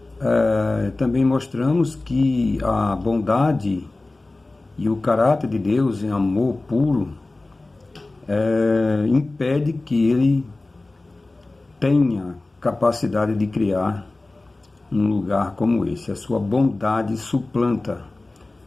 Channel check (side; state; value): right; quieter; 3.0 dB